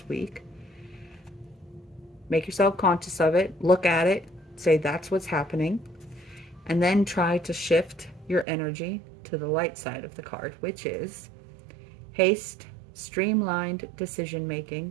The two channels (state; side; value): drops out; left; at 8.5 s